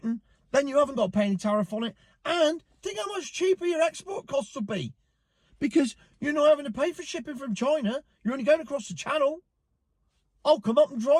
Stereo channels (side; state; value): both; identical; correlation 1.00